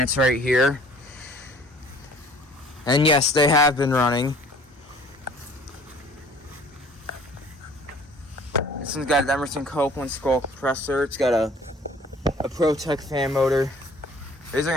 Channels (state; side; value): normal; both; correlation 0.52